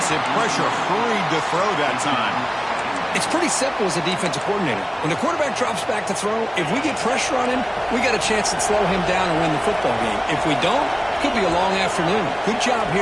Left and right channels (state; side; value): identical; both; correlation 1.00